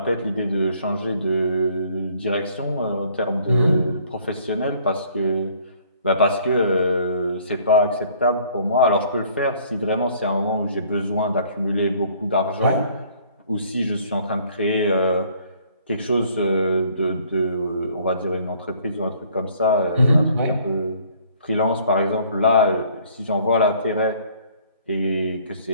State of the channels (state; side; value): inverted; both; correlation -0.59